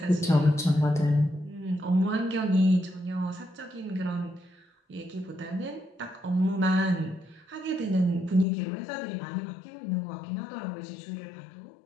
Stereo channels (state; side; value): drops out; right; at 8.5 s